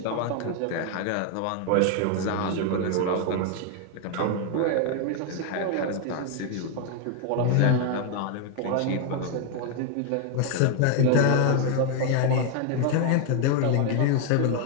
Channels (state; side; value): different; both; correlation 0.00